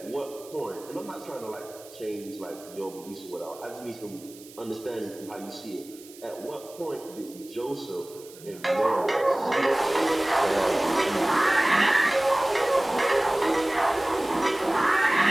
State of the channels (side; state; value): right; noise; hiss, 20 dB below the sound